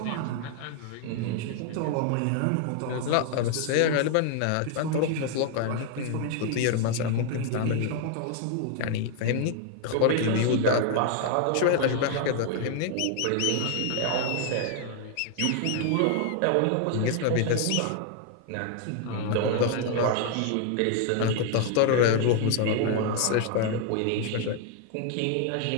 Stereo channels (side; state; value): both; different; correlation 0.00